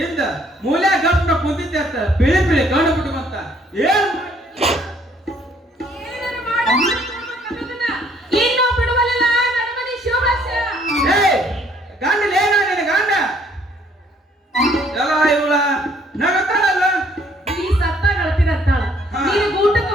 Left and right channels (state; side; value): normal; both; correlation 0.63